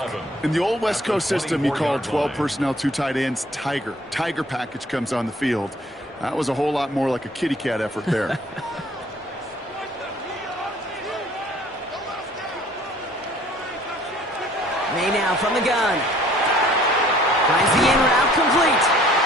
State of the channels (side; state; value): both; normal; correlation 0.56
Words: In the old West Coast system, you call 12 personnel, 2 tight ends, Tiger. Tiger package comes on the field. That was a whole lot more like a kitty cat effort there. May now from the gun. Finds the in route complete.